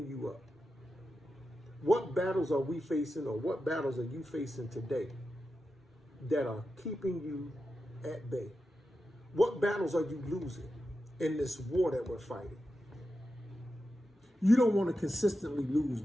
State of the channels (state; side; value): normal; both; correlation 0.90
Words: you up? What battles are we facing, or what battles are you facing today that are keeping you at bay? What battles are you losing in this war that we're fighting? You don't want to consistently lose